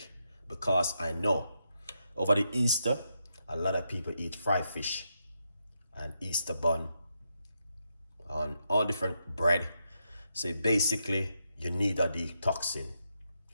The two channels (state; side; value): inverted; both; correlation -0.82